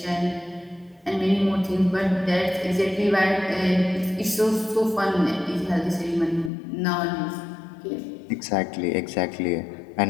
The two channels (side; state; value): right; drops out; at 6.5 s